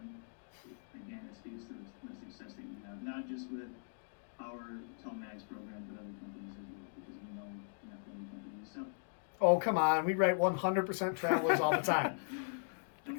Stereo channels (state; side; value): silent; right; digital silence